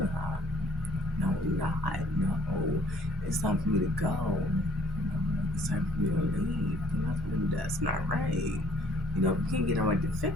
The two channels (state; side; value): normal; both; correlation 0.60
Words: No, not. No. It's time for me to go. It's time for me to leave. That's not right. We can't get nobody to